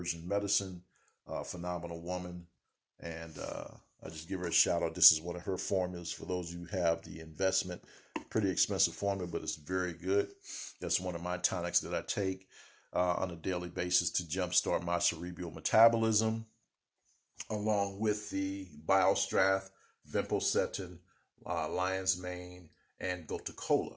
medicine, phenomenal woman. And I just give her a shout out. This is one of her formulas for those who have the investment. Pretty expensive formula, but it's very good. That's one of my tonics that I take on a daily basis to jumpstart my cerebral metabolism. along with the Biostrath, Vimpocetin, Lion's Mane, and Gotacola.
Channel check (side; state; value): both; identical; correlation 1.00